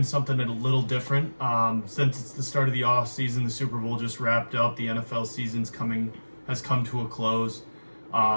something a little different. Since it's the start of the offseason, the Super Bowl just wrapped up. The NFL has come to a close.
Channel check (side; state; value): both; inverted; correlation -1.00